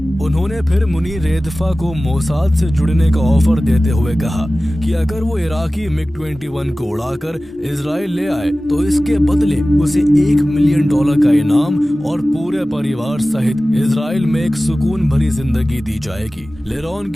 उन्होंने फिर मुनीर रेदफा को मोसाद से जुड़ने का ऑफर देते हुए कहा कि अगर वो इराकी MiG-21 को उड़ाकर इजराइल ले आए तो इसके बदले उसे $1 मिलियन का इनाम और पूरे परिवार सहित इजराइल में एक सुकून भरी जिंदगी दी जाएगी। लेरॉन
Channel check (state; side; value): normal; both; correlation 0.97